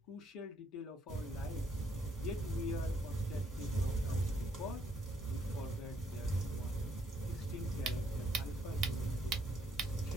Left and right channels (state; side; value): normal; both; correlation 0.71